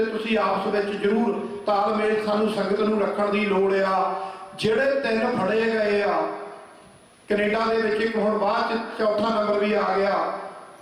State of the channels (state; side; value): identical; both; correlation 1.00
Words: ਤੁਸੀਂ ਆਪਸ ਵਿੱਚ ਜ਼ਰੂਰ ਤਾਲਮੇਲ ਸਾਨੂੰ ਸੰਗਤ ਨੂੰ ਰੱਖਣ ਦੀ ਲੋੜ ਆ। ਜਿਹੜੇ 3 ਫੜੇ ਗਏ ਆ ਕੈਨੇਡਾ ਦੇ ਵਿੱਚ, ਇੱਕ ਹੁਣ ਬਾਅਦ ਚ 4ਥਾ ਨੰਬਰ ਵੀ ਆ ਗਿਆ,